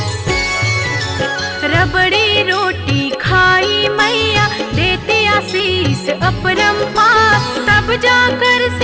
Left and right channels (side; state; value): both; identical; correlation 1.00